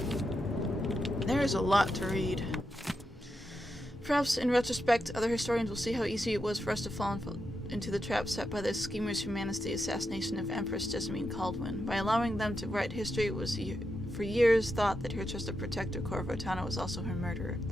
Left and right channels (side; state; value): both; normal; correlation 0.86